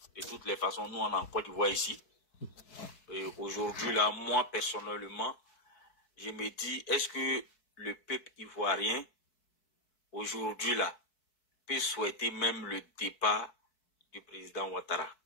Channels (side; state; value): right; late; 4.6 ms